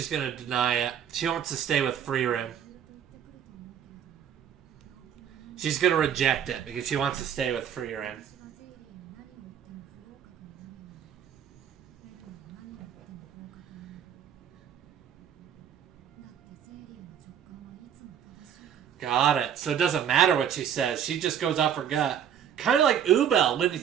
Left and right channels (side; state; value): left; quieter; 9.0 dB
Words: going to deny it. She wants to stay with Frieren. She's going to reject it because she wants to stay with Frieren. Got it. So it doesn't matter what she says. She just goes off her gut. Kind of like Ubel when you